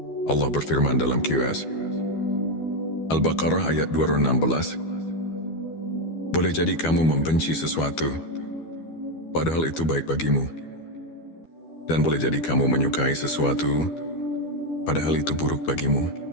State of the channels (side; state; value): right; late; 12 ms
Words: Allah berfirman dalam QS Al-Baqarah ayat 216. Boleh jadi kamu membenci sesuatu, padahal itu baik bagimu. Dan boleh jadi kamu menyukai sesuatu, padahal itu buruk bagimu.